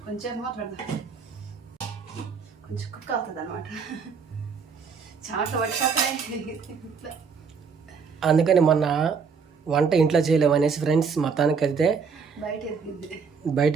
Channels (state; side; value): quieter; left; 5.7 dB